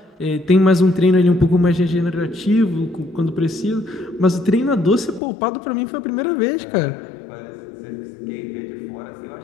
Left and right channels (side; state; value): right; drops out; at 5.2 s